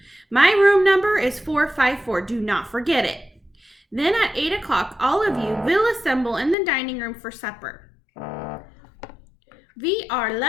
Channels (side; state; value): right; drops out; at 6.6 s